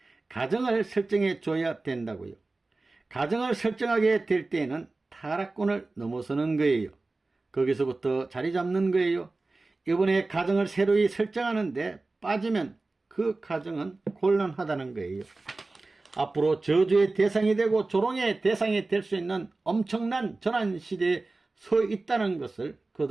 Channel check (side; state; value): left; quieter; 3.3 dB